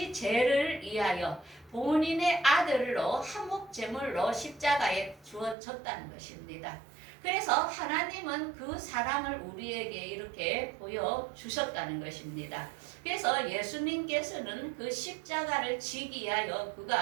죄를 위하여 본인의 아들로 화목제물로 십자가에 주어졌다는 것입니다. 그래서 하나님은 그 사랑을 우리에게 이렇게 보여주셨다는 것입니다. 그래서 예수님께서는 그 십자가를 지기 위하여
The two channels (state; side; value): drops out; left; at 5.6 s